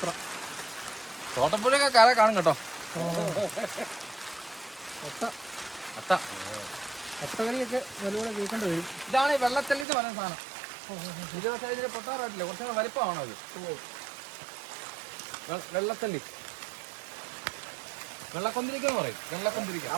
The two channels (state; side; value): drops out; left; at 9.9 s